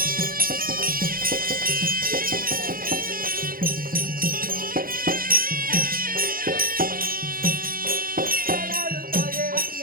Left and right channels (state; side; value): late; left; 0.42 ms